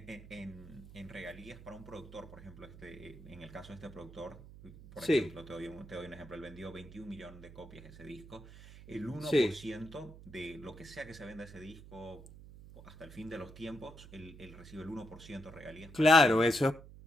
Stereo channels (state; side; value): noise; right; hum, 17 dB below the sound